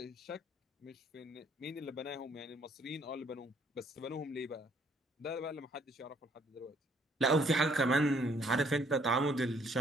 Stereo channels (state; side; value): normal; both; correlation 0.65